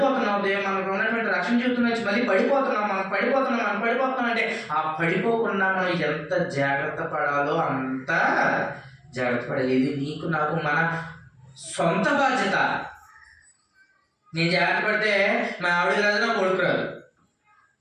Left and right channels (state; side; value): identical; both; correlation 1.00